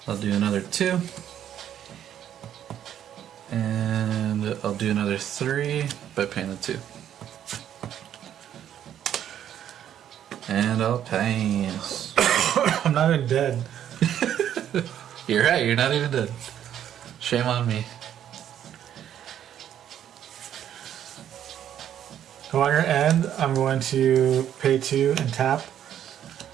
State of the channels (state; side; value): quieter; left; 10.3 dB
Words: I'll do another 2. And I'll do another 3 by paying the 2. And I'll pass. I'm not even dead. You're right, you're not even dead. Shame on me. So on your end, I'm going to pay 2 and tap